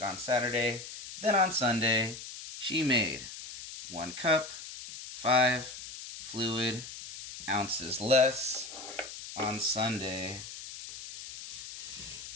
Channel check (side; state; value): left; noise; hiss, 11 dB below the sound